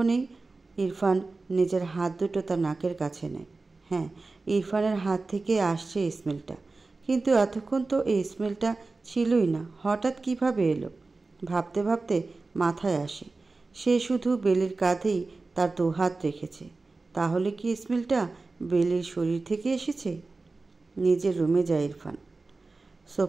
ইরফান নিজের হাত দুটো তার নাকের কাছে নেয়। হ্যাঁ, ইরফানের হাত থেকে আসছে স্মেলটা, কিন্তু এতক্ষণ তো এই স্মেলটা ছিলই না। হঠাৎ কিভাবে এলো? ভাবতে ভাবতে মাথায় আসে, সে শুধু বেলির কাঁধেই তার দুহাত রেখেছে। তাহলে কি স্মেলটা বেলির শরীর থেকে এসেছে? নিজের রুমে যায় ইরফান।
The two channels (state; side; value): quieter; left; 3.6 dB